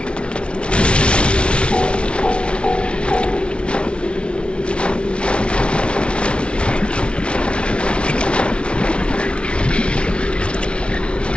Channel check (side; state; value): right; late; 0.059 ms